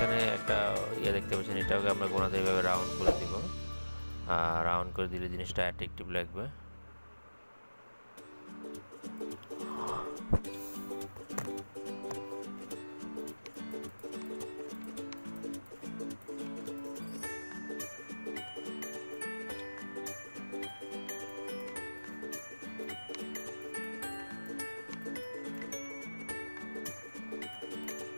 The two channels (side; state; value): both; inverted; correlation -1.00